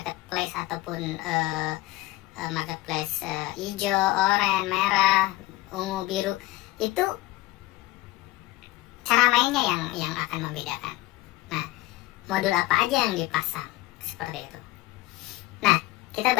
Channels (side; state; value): right; quieter; 18.7 dB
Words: ataupun marketplace hijau, oranye, merah, ungu, biru, itu cara mainnya yang akan membedakan. Nah, modul apa aja yang dipasang seperti itu. Nah, kita